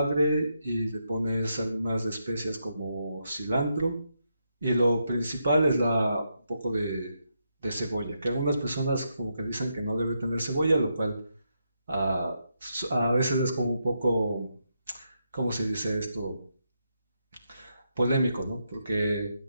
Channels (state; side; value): inverted; both; correlation -0.82